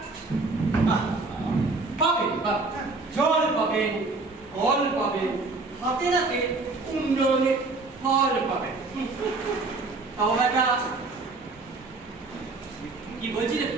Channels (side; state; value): left; quieter; 3.6 dB